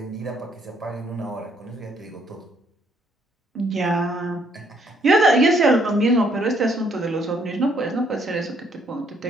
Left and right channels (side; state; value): both; normal; correlation 0.68